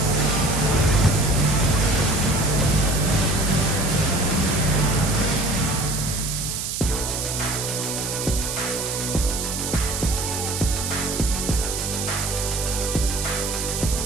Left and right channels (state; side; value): noise; right; hiss, 4 dB below the sound